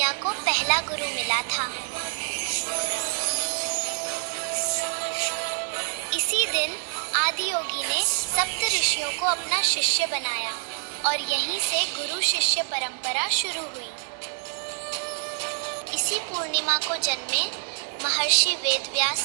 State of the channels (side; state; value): left; silent; 61 dB below the other